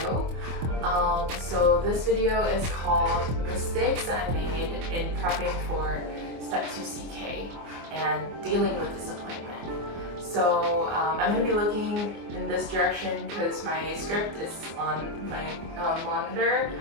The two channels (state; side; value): late; left; 24 ms